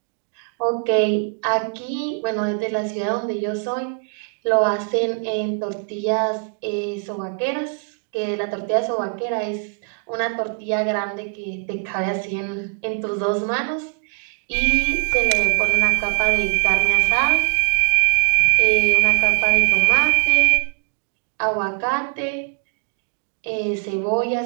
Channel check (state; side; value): quieter; left; 39.4 dB